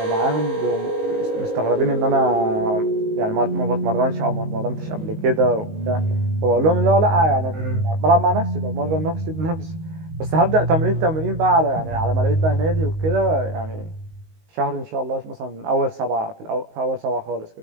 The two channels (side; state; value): left; late; 19 ms